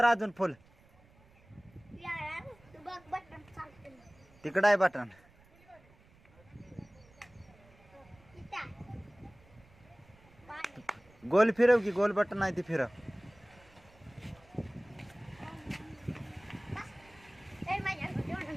अजून फुल. यार तू बघ बटन चालते. तिकडं आहे बटन. इथं. पाणी. गोल फिरव की, गोल बटन आहे ती फिरव. ए माझ्या जेवण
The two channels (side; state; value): right; noise; rumble, 27 dB below the sound